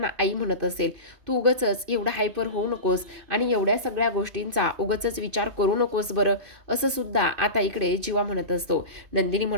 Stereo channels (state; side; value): late; left; 2.5 ms